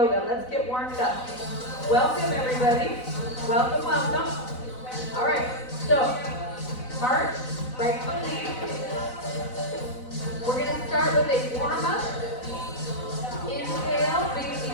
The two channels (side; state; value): right; late; 4.0 ms